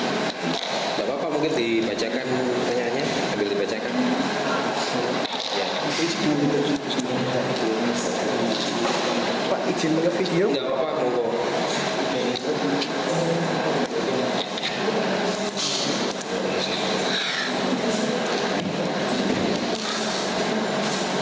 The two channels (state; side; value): identical; both; correlation 1.00